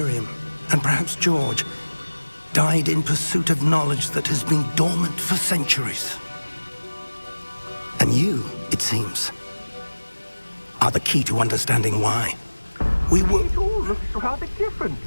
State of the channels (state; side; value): inverted; both; correlation -1.00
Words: and perhaps George, died in pursuit of knowledge that has been dormant for centuries. And you, it seems, are the key to understanding why. We were... It all looks rather different